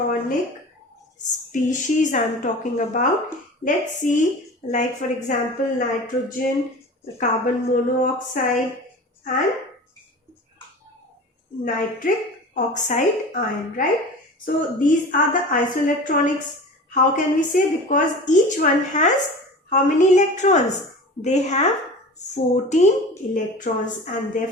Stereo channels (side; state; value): both; normal; correlation 0.36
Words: species I am talking about. Let's see, like for example, nitrogen, carbon monoxide and nitric oxide ion, right? So these are the isoelectronics. How can we say? Because each one has how many electrons? They have 14 electrons, and